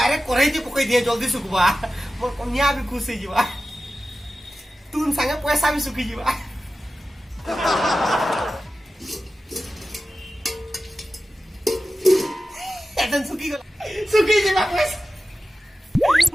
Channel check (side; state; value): both; normal; correlation 0.94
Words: কড়াইতে পকাই দিয়ে জলদি শুকবা মোর কন্যা भी खुश हो जीवा तुम संगे पैसा भी सुखी जीवा এজন সুকি গলা সুকি যিবা পইচা